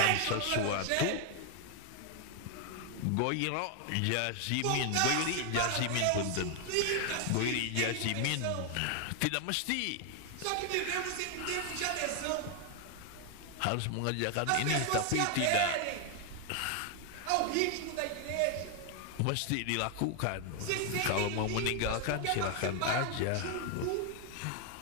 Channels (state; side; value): different; both; correlation 0.00